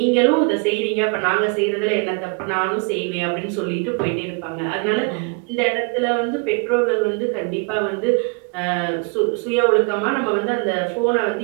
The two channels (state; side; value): quieter; left; 34.2 dB